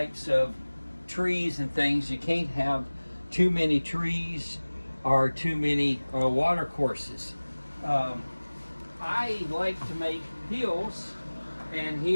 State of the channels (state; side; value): inverted; both; correlation -1.00